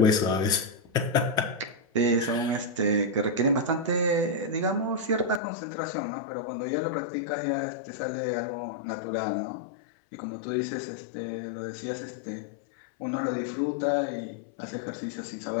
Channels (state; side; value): drops out; right; at 5.4 s